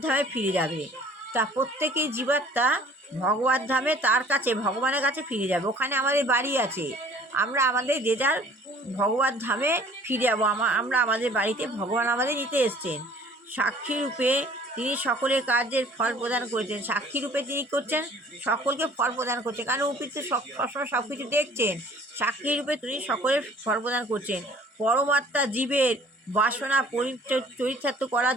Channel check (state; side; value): normal; both; correlation 0.52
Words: ধামে ফিরে যাবে। তা প্রত্যেকেই জীবাত্মা ভগবত ধামে তার কাছে ভগবানের কাছে ফিরে যাবে। ওখানে আমাদের বাড়ি আছে, আমরা আমাদের যে যার ভগবত ধামে ফিরে যাবো। আমরা আমাদের বাড়িতে ভগবান আমাদের নিতে এসছেন। সাক্ষী রূপে তিনি সকলের কার্যের ফল প্রদান করেছেন। সাক্ষী রূপে তিনি করছেন, সকলকে ফল প্রদান করছেন, কারণ উপর তো সবসময় সব কিছু দেখছেন। সাক্ষী রূপে তিনি সকলের ফল প্রদান করছেন। পরমাত্মা জীবের বাসনা চরিতার্থ করার